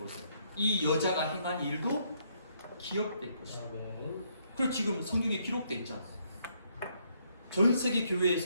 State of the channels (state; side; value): inverted; both; correlation -0.72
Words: 이 여자가 행한 일도 기억될 것이다. 그래서 지금 성경에 기록되어 있잖아. 전 세계